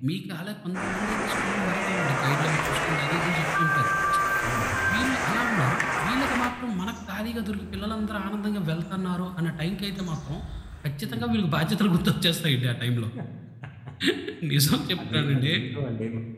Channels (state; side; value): identical; both; correlation 1.00